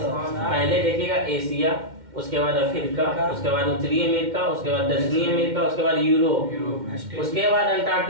पहले देखिएगा एशिया, उसके बाद अफ्रीका, उसके बाद उत्तरी अमेरिका, उसके बाद दक्षिणी अमेरिका, उसके बाद यूरोप, उसके बाद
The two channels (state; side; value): late; left; 2.1 ms